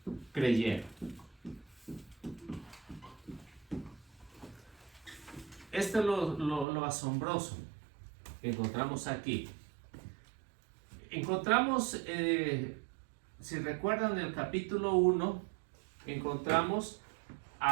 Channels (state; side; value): drops out; left; at 6.7 s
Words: creyeron. Esto es lo asombroso que encontramos aquí. Encontramos, si recuerdan el capítulo 1, encontramos